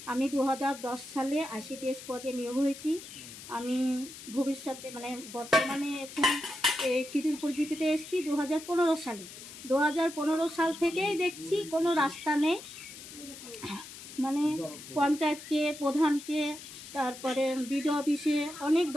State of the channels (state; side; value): noise; left; hiss, 14 dB below the sound